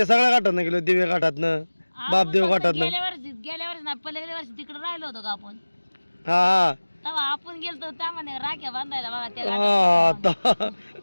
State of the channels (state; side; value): inverted; both; correlation -1.00